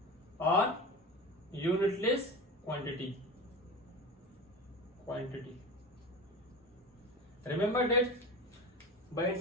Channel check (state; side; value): normal; both; correlation 0.29